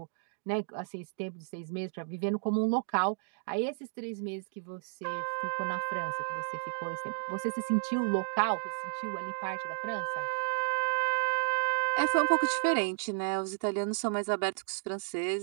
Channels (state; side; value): silent; left; digital silence